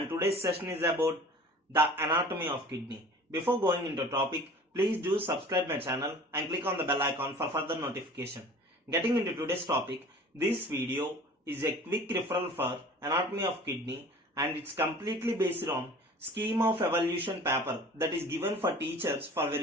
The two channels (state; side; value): normal; both; correlation 0.44